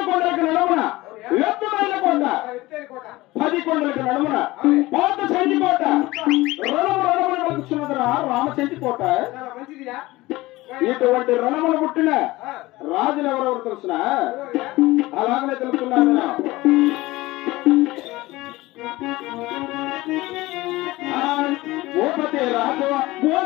కొండలకు నడుమున ఎత్తుమైన కోట 10 కొండలకు నడుమున పాత చెంటి కోట రణమున వలుచున్నదిరా రామచెంటి కోట ఇటువంటి రణములు పుట్టిన రాజులు ఎవరెవరు తెలుసిన అలాగనే తెలుసుకున్నాను భూపతి రాజు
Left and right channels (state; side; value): quieter; right; 19.4 dB